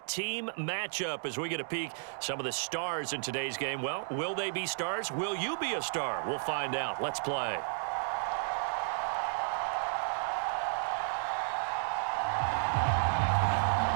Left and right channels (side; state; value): left; silent; digital silence